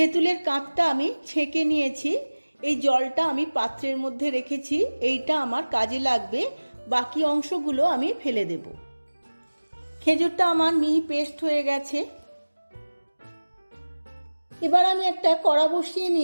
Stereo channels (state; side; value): inverted; both; correlation -1.00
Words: কাঁচটা আমি ছেঁকে নিয়েছি। এই জলটা আমি পাত্রের মধ্যে রেখেছি, এইটা আমার কাজে লাগবে। বাকি অংশগুলো আমি ফেলে দেব। খেজুরটা আমার মিহি পেস্ট হয়ে গেছে। এবার আমি একটা কড়া বসিয়ে